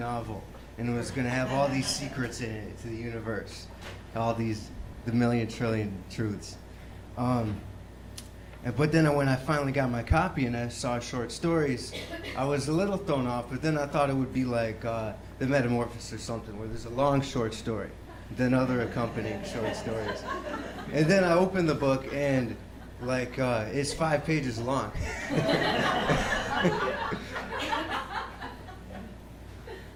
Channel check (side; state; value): both; identical; correlation 1.00